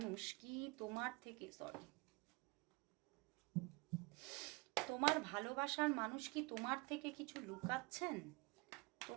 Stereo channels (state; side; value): quieter; left; 26.4 dB